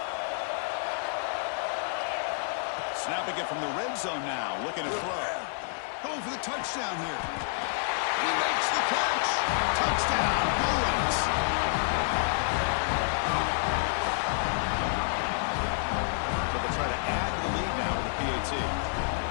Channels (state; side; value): silent; right; 59 dB below the other